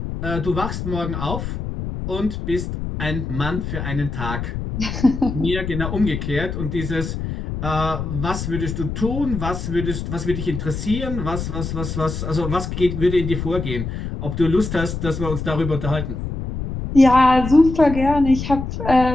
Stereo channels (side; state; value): left; noise; rumble, 5 dB below the sound